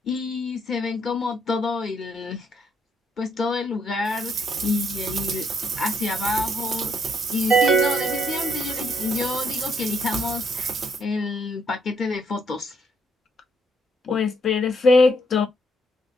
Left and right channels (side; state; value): both; normal; correlation 0.72